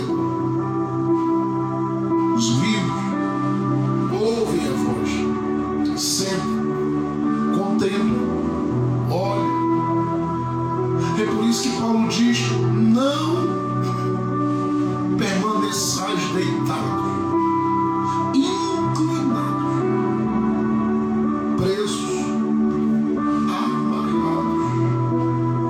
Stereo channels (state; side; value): identical; both; correlation 1.00